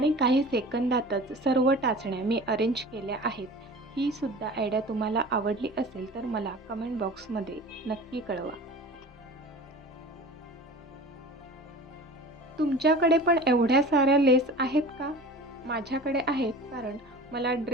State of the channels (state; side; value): normal; both; correlation 0.39